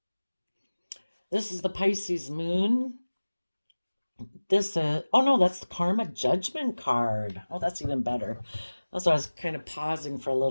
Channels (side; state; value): both; inverted; correlation -1.00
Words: this is the Pisces moon. This is, oh no, that's the Karma Judgment card. Oh, that's even better. That's why I was kind of pausing for a